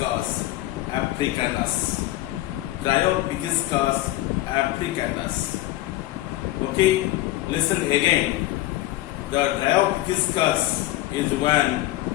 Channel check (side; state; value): right; quieter; 16.5 dB